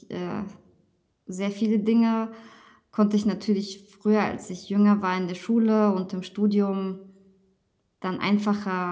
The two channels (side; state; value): both; identical; correlation 1.00